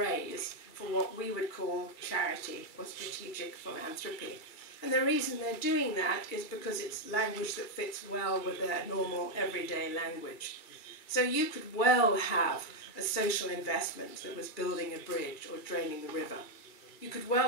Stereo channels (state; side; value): late; right; 2.3 ms